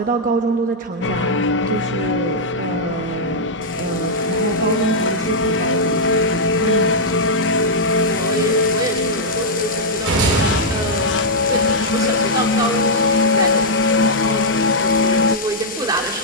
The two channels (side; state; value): both; normal; correlation -0.07